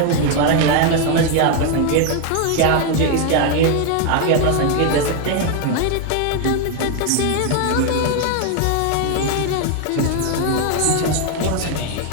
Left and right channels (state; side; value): different; both; correlation 0.01